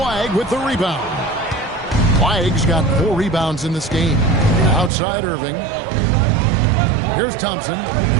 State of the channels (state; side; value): drops out; left; at 4.9 s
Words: with the rebound. Flag's got 4 rebounds in this game. Outside Irving. Here's Thompson,